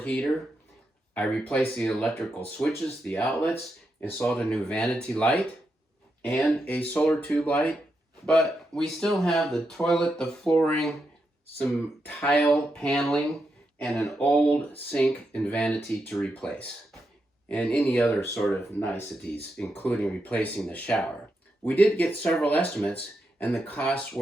heater. I replaced the electrical switches, the outlets, installed a new vanity light and a solar tube light. But we still have the toilet, the flooring, some tile paneling, and an old sink and vanity to replace, and any other sort of niceties, including replacing the shower. We did get several estimates, and the costs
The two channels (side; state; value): both; normal; correlation 0.85